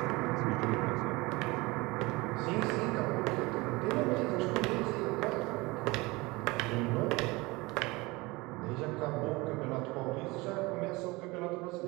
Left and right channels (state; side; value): quieter; left; 23.1 dB